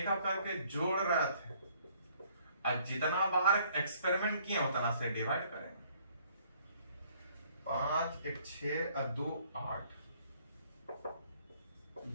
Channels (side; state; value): both; inverted; correlation -0.62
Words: एक करके जोड़ रहे थे, और जितना बार एक्सपेरिमेंट किया उतना से डिवाइड करेंगे। 5 1 6 और 2 8